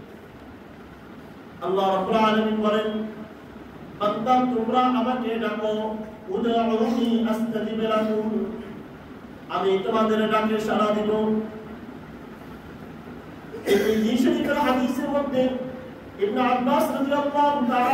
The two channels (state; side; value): identical; both; correlation 1.00